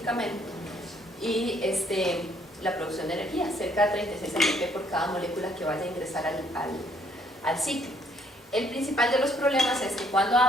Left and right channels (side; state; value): both; normal; correlation 0.66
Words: y la producción de energía, cerca de 36 ATP por cada molécula que vaya a ingresar al ciclo. El principal de los problemas es que cuando